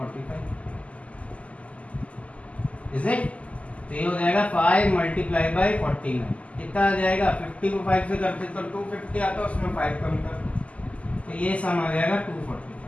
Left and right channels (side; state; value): right; late; 0.066 ms